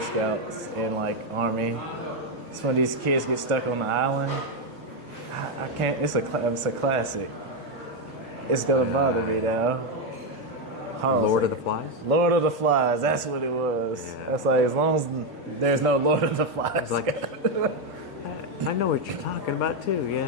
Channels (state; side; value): late; right; 1.3 ms